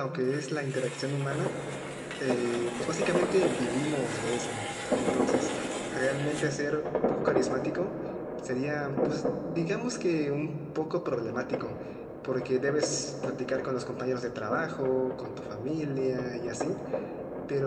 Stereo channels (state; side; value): identical; both; correlation 1.00